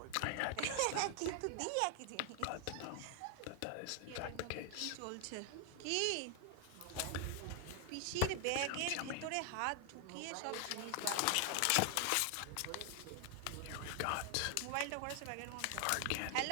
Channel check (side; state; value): both; different; correlation 0.00